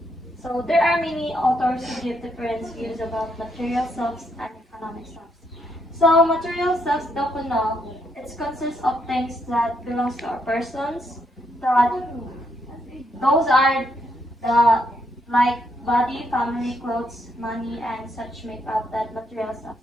So there are many authors who give different views about material selves and economic selves. So material selves know it consists of things that belongs to our persons, that those are the like body, family, clothes, money, and such make up that material self.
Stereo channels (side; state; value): both; normal; correlation 0.76